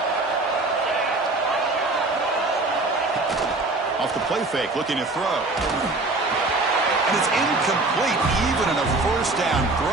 Off the play fake, looking to throw. And it's incomplete, even in a first down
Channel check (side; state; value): left; quieter; 3.1 dB